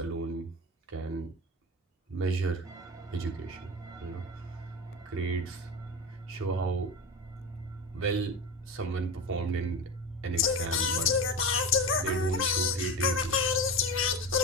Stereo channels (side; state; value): both; normal; correlation 0.25